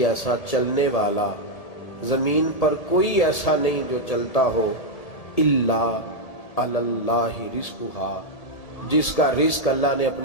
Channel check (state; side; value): late; right; 1.8 ms